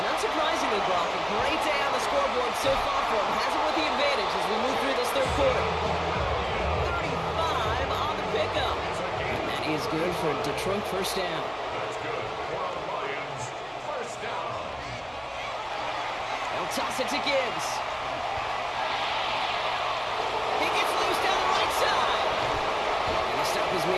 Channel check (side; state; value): both; identical; correlation 1.00